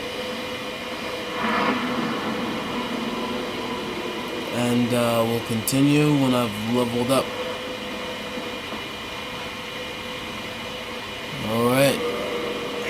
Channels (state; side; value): identical; both; correlation 1.00